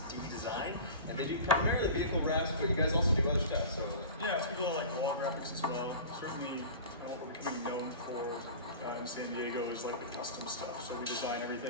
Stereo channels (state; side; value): inverted; both; correlation -0.36